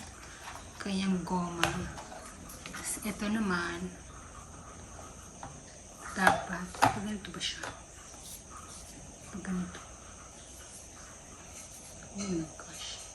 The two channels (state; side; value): identical; both; correlation 1.00